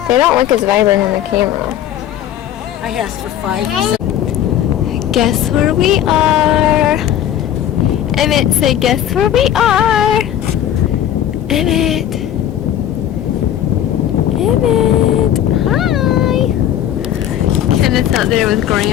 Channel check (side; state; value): right; quieter; 10.9 dB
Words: They don't look as vibrant on the camera. I asked for 5. Guess where we are? Emmett said, guess where we are? Emmett. Emmett. Hi. Kenneth's out there with